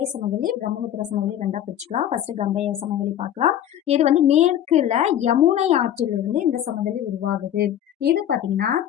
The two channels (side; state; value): right; quieter; 10.9 dB